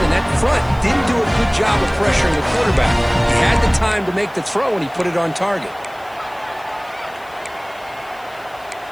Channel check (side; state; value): left; noise; hiss, 27 dB below the sound